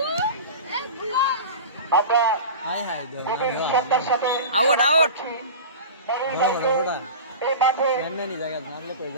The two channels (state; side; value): inverted; both; correlation -0.32